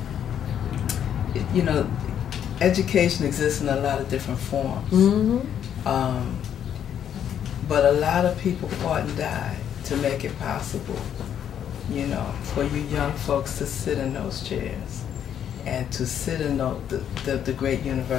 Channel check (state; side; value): quieter; right; 9.3 dB